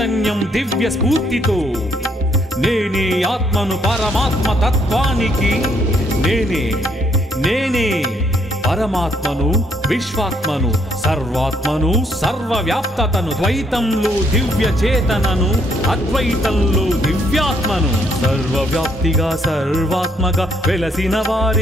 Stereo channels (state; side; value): normal; both; correlation 0.70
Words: దివ్య స్ఫూర్తితో నేనే ఆత్మను పరమాత్మ తత్వానికి నేనే నేనే పరమాత్మను విశ్వాత్మను సర్వాత్మను సర్వవ్యాప్తతను ద్వైతంలో దివ్య చేతనను అద్వైతంలో దివ్యాత్మను సర్వవ్యాప్తిగా సర్వాత్మగా వెలసిన